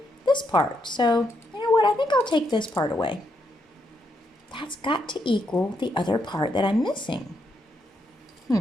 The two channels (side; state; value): both; normal; correlation 0.79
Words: this part. So, you know what, I think I'll take this part away. That's got to equal the other part that I'm missing.